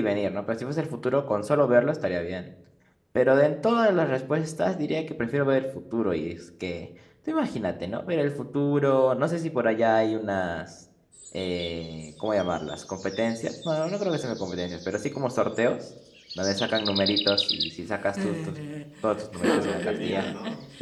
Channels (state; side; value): identical; both; correlation 1.00